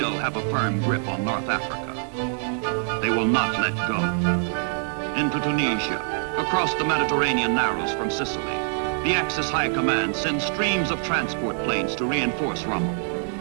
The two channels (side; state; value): left; silent; 62 dB below the other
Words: have a firm grip on North Africa. They will not let go. Into Tunisia, across the Mediterranean narrows from Sicily, the Axis High Command sends streams of transport planes to reinforce